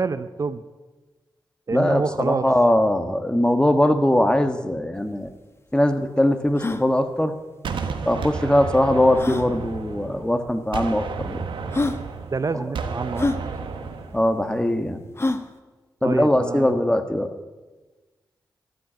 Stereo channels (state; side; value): normal; both; correlation 0.93